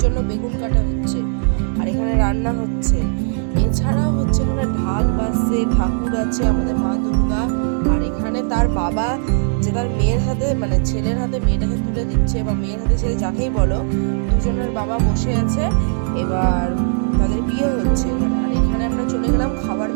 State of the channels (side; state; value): left; silent; 67 dB below the other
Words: জন্য বেগুন কাটা হচ্ছে, আর এখানে রান্না হচ্ছে। এছাড়াও হচ্ছে এখানে ঢাক বাজছে, ঠাকুর আছে, আমাদের মা দুর্গা। আর এখানে তার বাবা যে তার মেয়ের হাতে, মানে ছেলের হাতে মেয়েটাকে তুলে দিচ্ছে, বা মেয়ের হাতে ছেলে যাকেই বলো, দুজনের বাবা বসে আছে, এবার তাদের বিয়ে হচ্ছে। আর এখানে আমরা চলে গেলাম খাবার